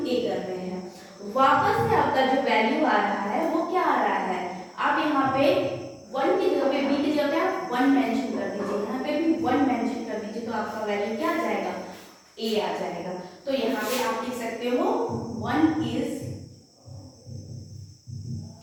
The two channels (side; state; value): both; identical; correlation 1.00